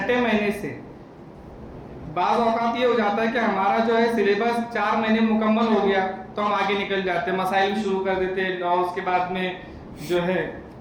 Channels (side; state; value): both; identical; correlation 1.00